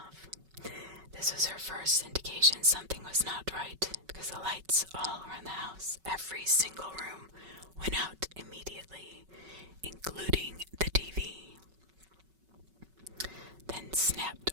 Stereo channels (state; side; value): late; left; 5.3 ms